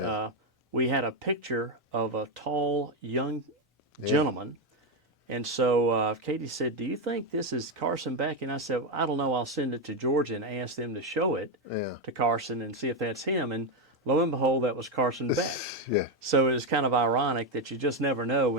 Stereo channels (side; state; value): both; normal; correlation 0.07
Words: we had a picture of a tall, young gentleman, and so Katie said, do you think this is Carson Beck? And I said, I don't know, I'll send it to Georgia and ask them to show it to Carson and see if that's him, and lo and behold, that was Carson Beck. So it was kind of ironic that you just never know